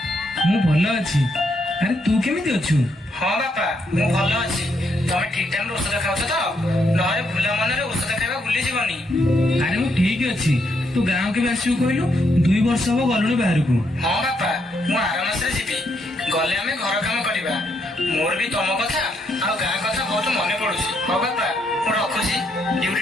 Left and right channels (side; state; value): both; normal; correlation 0.76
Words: ମୁଁ ଭଲ ଅଛି। ଆରେ ତୁ କେମିତି ଅଛୁ? हाँ बापा मु भल अछि। तमे ठीक टाइम रे औषध खाउछ त? नहरे भूला मनरे औषध खाइबा भूली जीवनी। ଆରେ ମୁଁ ଠିକ ଅଛି। ତୁ ଗାଁ କେବେ ଆସିବୁ କହିଲୁ? 2 ବର୍ଷ ହବ ଗଲୁଣି ବାହାରକୁ। हाँ बापा मु आर मासरे जीवी। गले आमे घर काम करिबा। मोर भी तम कथा आ गां कथा बहुत मने पडुछि। हो बापा मु रखुछि, ड्यूटी